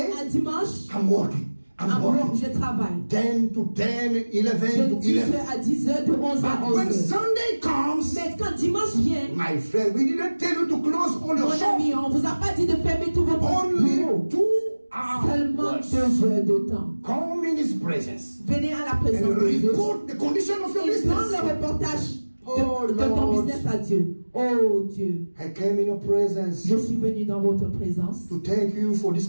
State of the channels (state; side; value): inverted; both; correlation -1.00